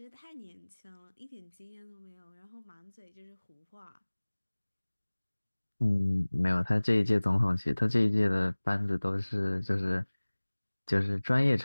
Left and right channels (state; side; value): inverted; both; correlation -1.00